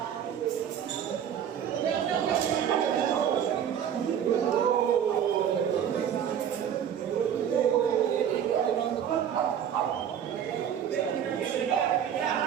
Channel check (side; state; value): left; quieter; 9.1 dB